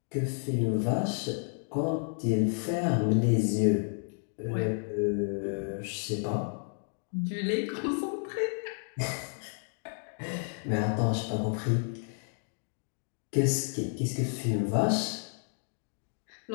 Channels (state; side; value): silent; right; 57 dB below the other